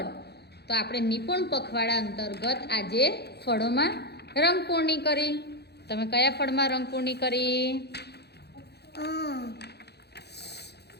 તો આપણે નિપુણ પખવાડા અંતર્ગત આજે ફળોમાં રંગપૂર્ણી કરી. તમે કયા ફળમાં રંગપૂર્ણી કરી?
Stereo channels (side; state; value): right; late; 0.48 ms